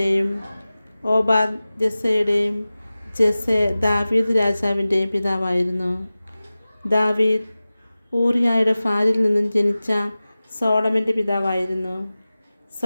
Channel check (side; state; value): both; inverted; correlation -0.97